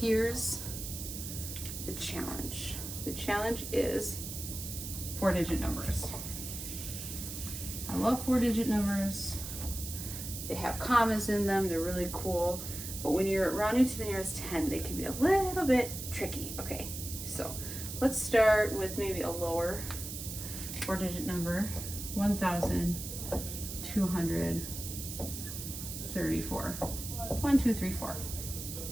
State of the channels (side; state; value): right; noise; hiss, 7 dB below the sound